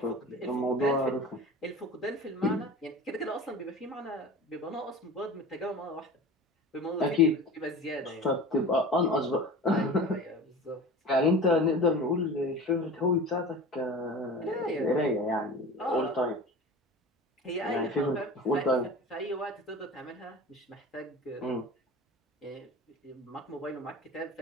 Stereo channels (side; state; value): both; normal; correlation 0.36